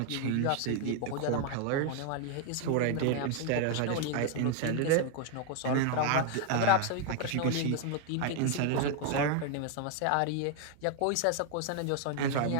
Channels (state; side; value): different; both; correlation 0.00